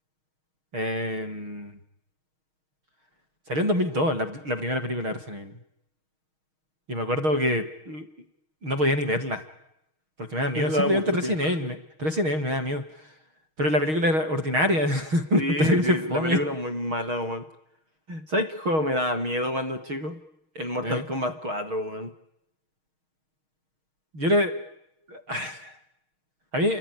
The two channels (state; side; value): late; left; 6.4 ms